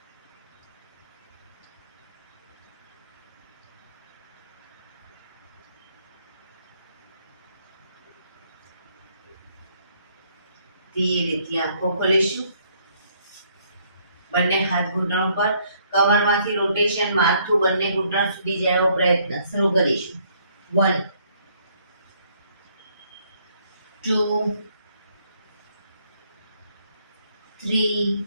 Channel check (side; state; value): both; inverted; correlation -0.67